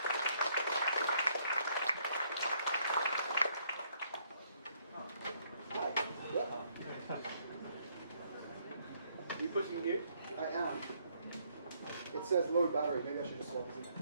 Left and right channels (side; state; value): both; inverted; correlation -0.69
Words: Are you pushing mute? I am. It says low battery. Maybe I should just swap this in.